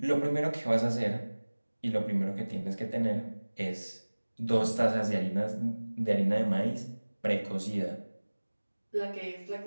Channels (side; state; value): both; inverted; correlation -1.00